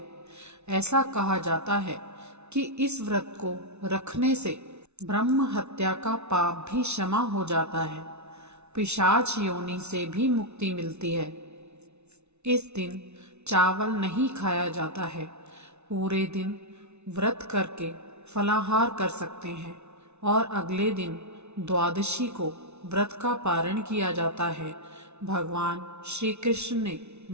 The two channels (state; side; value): late; left; 0.81 ms